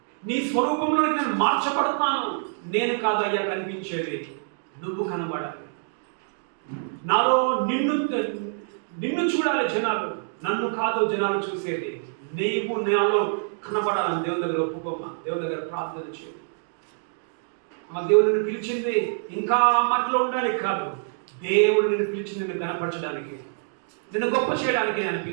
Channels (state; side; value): silent; left; digital silence